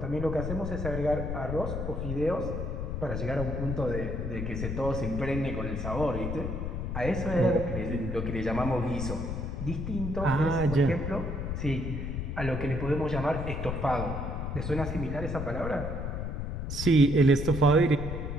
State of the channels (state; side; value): noise; left; rumble, 4 dB below the sound